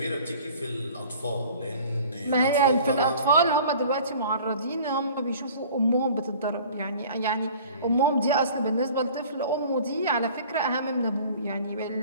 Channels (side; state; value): both; inverted; correlation -0.47